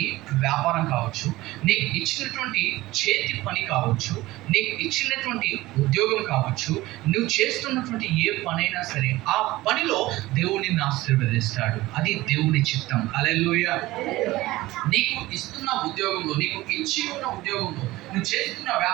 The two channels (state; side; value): quieter; left; 18.3 dB